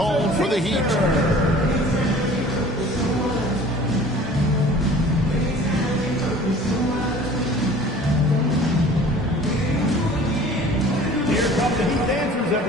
for the Heat.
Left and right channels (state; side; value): normal; both; correlation 0.47